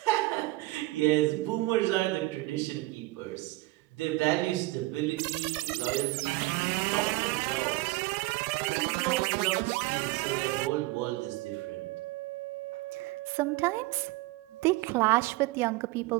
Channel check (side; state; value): left; quieter; 20.8 dB